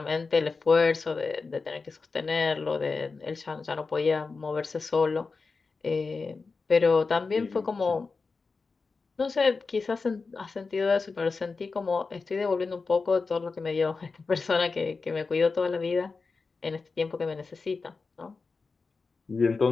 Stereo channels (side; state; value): right; quieter; 4.3 dB